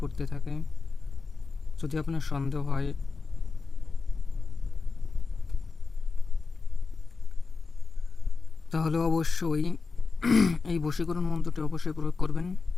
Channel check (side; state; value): right; quieter; 4.4 dB